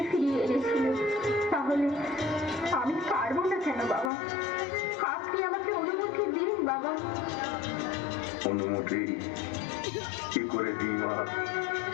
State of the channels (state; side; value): drops out; right; at 4.1 s